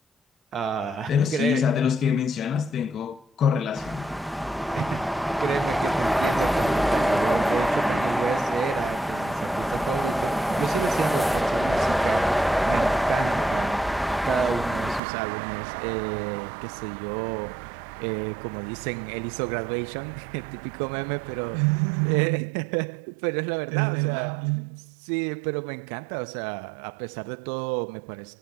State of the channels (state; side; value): drops out; left; at 15.0 s